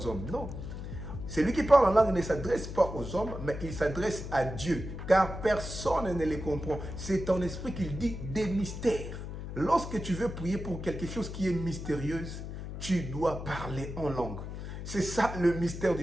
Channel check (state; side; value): noise; left; hum, 8 dB below the sound